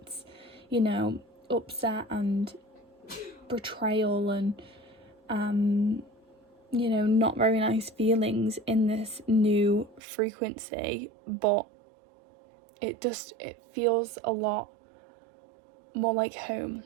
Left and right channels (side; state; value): left; drops out; at 10.0 s